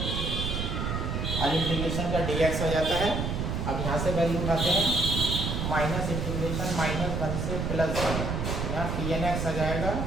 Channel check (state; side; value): noise; right; rumble, 1 dB below the sound